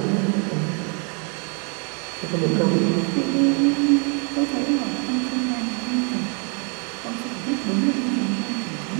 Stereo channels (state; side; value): quieter; left; 37.2 dB